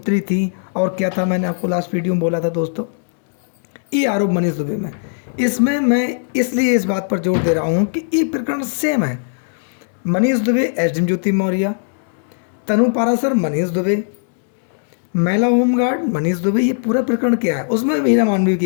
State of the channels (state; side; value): silent; right; digital silence